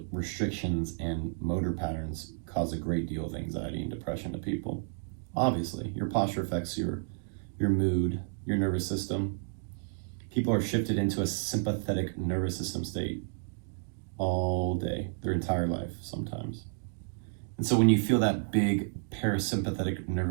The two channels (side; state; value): left; silent; digital silence